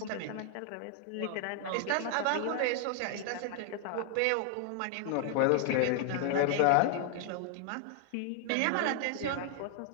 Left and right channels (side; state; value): both; different; correlation 0.00